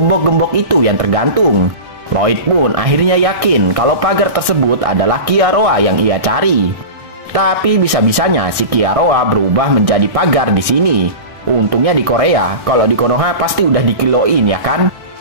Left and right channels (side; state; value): left; late; 1.6 ms